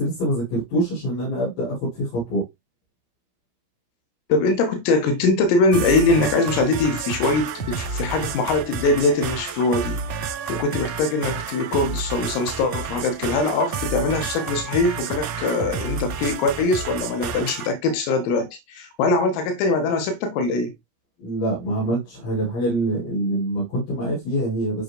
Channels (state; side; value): late; right; 17 ms